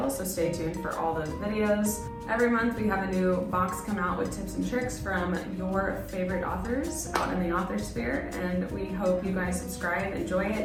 so stay tuned for all those videos. Every month we have a new box come out with tips and tricks from your favorite authors out in the author sphere, and we hope you guys subscribe, enjoy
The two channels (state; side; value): identical; both; correlation 1.00